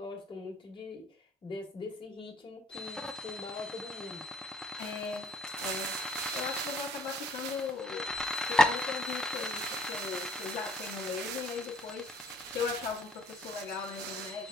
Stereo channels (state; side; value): normal; both; correlation 0.60